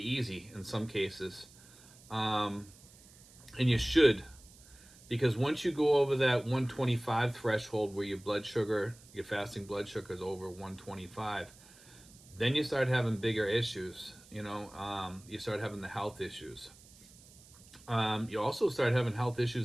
in some cases. Um, and you should, because once you go over that 125 threshold where your fasting blood sugar is over 125, then you start having bigger issues. You start having the health issues. You also start having health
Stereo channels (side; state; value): right; noise; hiss, 23 dB below the sound